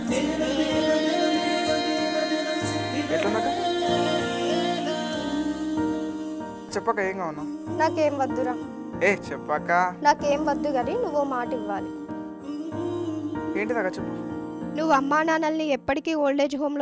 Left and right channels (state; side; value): identical; both; correlation 1.00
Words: ఎట్లుందక్క? చెప్పక ఏం కావునా? నాకేం వద్దురా. చెప్పక. నాకేం వద్దు కానీ నువ్వు మాట ఇవ్వాలి. ఏంటిదాకా చెప్పు. నువ్వు అమ్మా నాన్నల్ని ఎప్పటికీ ఓల్డేజ్